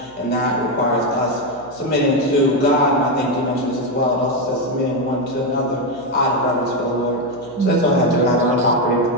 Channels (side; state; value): left; noise; hum, 28 dB below the sound